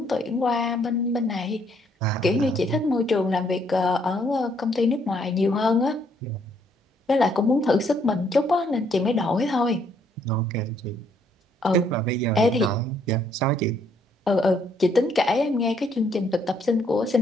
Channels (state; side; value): normal; both; correlation 0.69